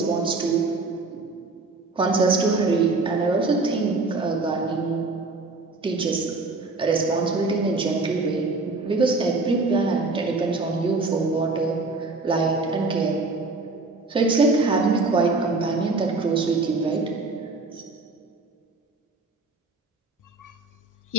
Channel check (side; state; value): left; quieter; 3.6 dB